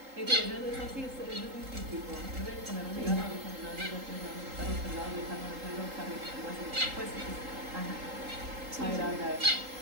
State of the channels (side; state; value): left; late; 3.8 ms